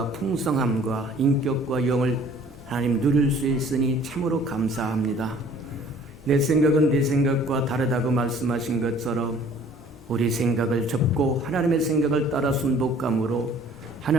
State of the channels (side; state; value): both; normal; correlation 0.53